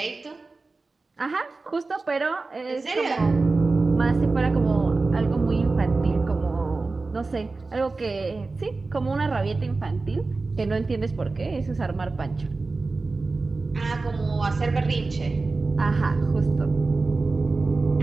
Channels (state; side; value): quieter; left; 3.7 dB